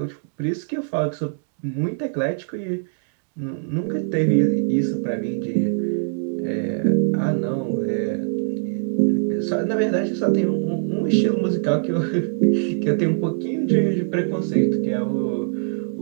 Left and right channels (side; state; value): left; silent; digital silence